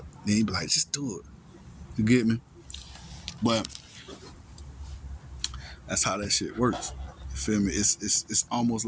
Then he be like, just do it. You get me? But that's how that shit works. You feel me? It's almost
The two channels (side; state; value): both; identical; correlation 1.00